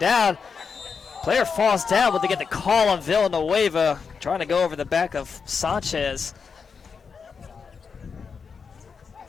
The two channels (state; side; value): quieter; right; 5.7 dB